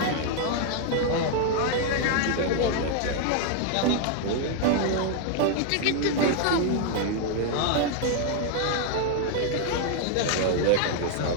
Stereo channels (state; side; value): different; both; correlation 0.00